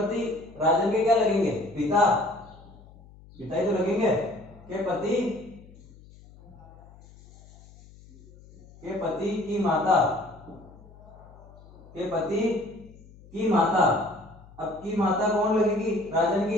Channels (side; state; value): left; noise; hum, 22 dB below the sound